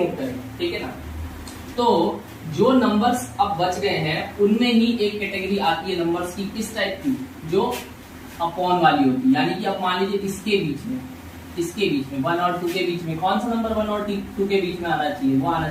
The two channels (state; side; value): identical; both; correlation 1.00